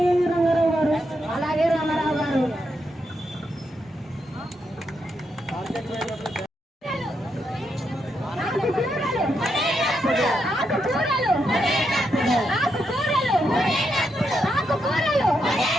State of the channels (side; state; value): both; normal; correlation 0.82